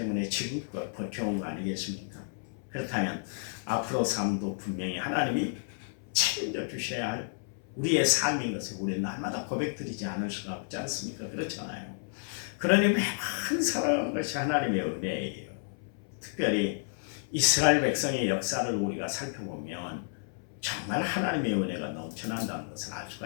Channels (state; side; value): silent; right; 57 dB below the other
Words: 지금껏 버텨온 거 아니겠습니까? 그렇다면 앞으로 삶도 분명히 하나님이 책임져 주셔야 할 우리의 삶인 것을 우리는 날마다 고백드리지 않을 수가 없지 않습니까? 그렇잖아요. 그러니 매번 살아가는 것이 하나님의 은혜예요. 특별히 이스라엘 백성의 역사를 우리가 살펴보면 정말 하나님의 은혜가 넘쳐난다는 것을 알